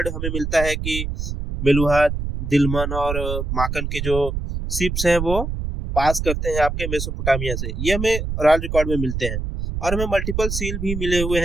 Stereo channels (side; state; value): right; noise; rumble, 4 dB below the sound